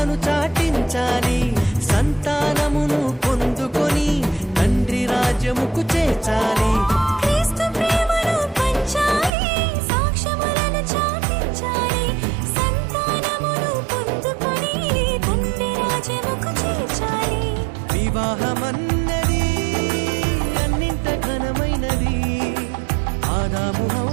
చాటించాలి సంతానమును పొందుకొని తండ్రి రాజ్యముకు చేర్చాలి క్రీస్తు ప్రేమను పంచాలి సాక్ష్యములను చాటించాలి సంతానమును పొందుకొని తండ్రి రాజ్యముకు చేర్చాలి వివాహమన్నది అన్నింట ఘనమైనది ఆదాము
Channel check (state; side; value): drops out; left; at 9.3 s